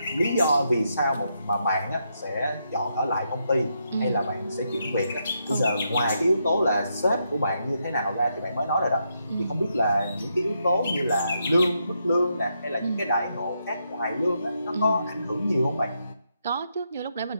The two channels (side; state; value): both; inverted; correlation -0.80